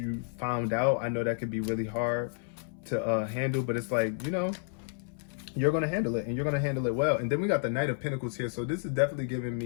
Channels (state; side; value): silent; right; 57 dB below the other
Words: found out. I know that could be really hard to handle, but it's like, you know, you're going to handle it, and you're going to handle it well. And then we got the Knight of Pentacles here. So this is definitely giving